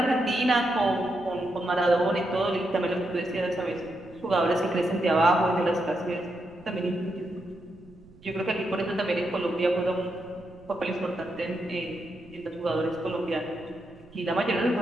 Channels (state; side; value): noise; right; rumble, 25 dB below the sound